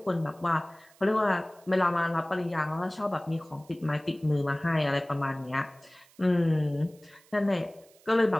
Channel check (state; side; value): noise; right; hiss, 28 dB below the sound